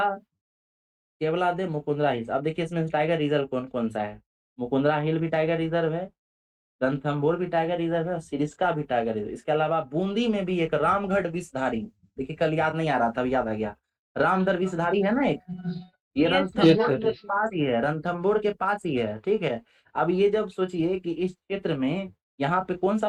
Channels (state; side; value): identical; both; correlation 1.00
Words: केवलादेव, मुकुंदरा हिल्स। अब देखिए इसमें टाइगर रिजर्व कौन कौन सा है? मुकुंदरा हिल भी टाइगर रिजर्व है, रणथंभौर भी टाइगर रिजर्व है और सिरिस्का भी टाइगर रिजर्व। इसके अलावा बूंदी में भी एक रामगढ़ विषधारी, देखिए कल याद नहीं आ रहा था, अब याद आ गया। रामगढ़ विषधारी है ना एक, ये यस यस रणथंभौर सर। के पास ही है, रणथंभौर के पास ही है। ठीक है, अब ये जब सोचिए कि इस क्षेत्र में यहाँ पे कौन सा